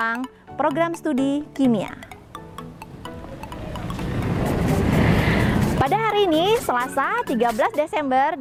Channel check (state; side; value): identical; both; correlation 1.00